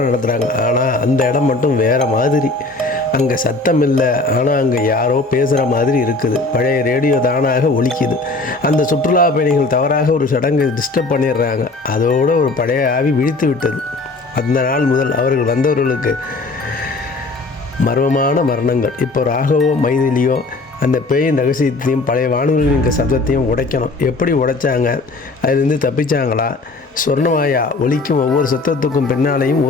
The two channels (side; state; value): right; quieter; 3.3 dB